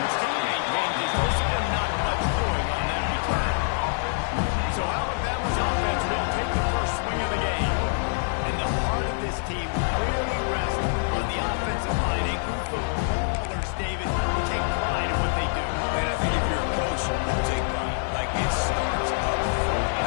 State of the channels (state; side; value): silent; right; digital silence